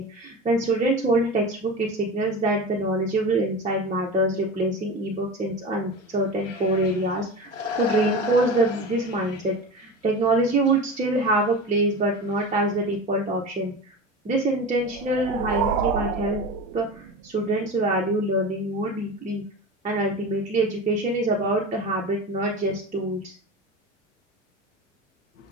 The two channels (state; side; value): normal; both; correlation 0.28